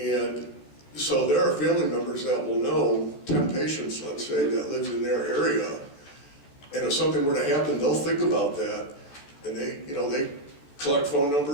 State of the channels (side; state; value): right; late; 14 ms